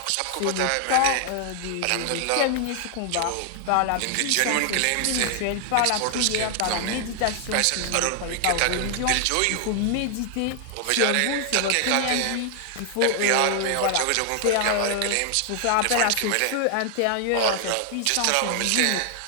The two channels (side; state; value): both; different; correlation 0.00